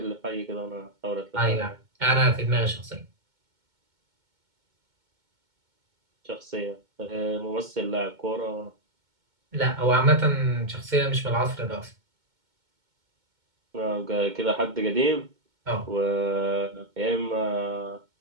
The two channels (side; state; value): left; late; 2.2 ms